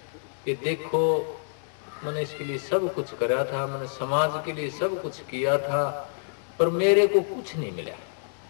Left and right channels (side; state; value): right; silent; digital silence